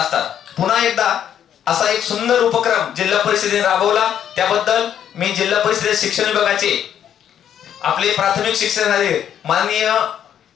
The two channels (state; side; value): quieter; right; 9.7 dB